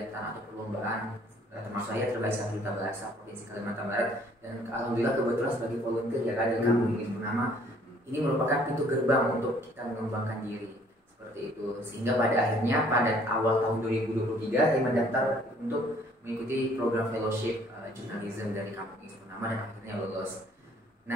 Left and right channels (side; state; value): both; normal; correlation 0.59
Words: atau perlombaan. Termasuk saya terbaik 1 duta bahasa Provinsi Kalimantan Barat, dan alhamdulillah kebetulan sebagai volunteer ya Kak dari Kampung Ilis Purnama. Ini merupakan pintu gerbang untuk kita mengembangkan diri. Itu sehingga pada akhirnya pada awal tahun 2023 saya mendaftar untuk mengikuti program fellowship jurnalisme dari Kampung Ilis Purnama dan akhirnya lulus.